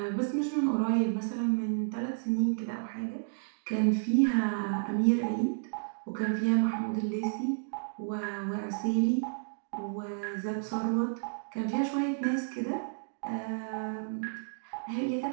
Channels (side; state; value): left; silent; digital silence